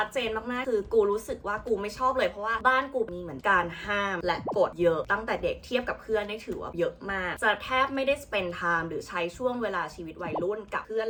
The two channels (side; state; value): both; identical; correlation 1.00